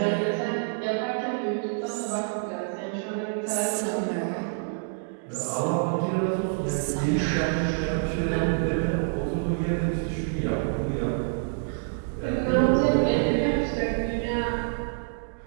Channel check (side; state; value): left; silent; digital silence